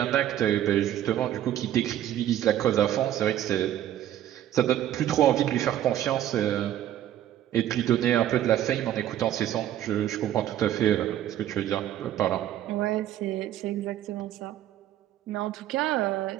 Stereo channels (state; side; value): quieter; left; 12.0 dB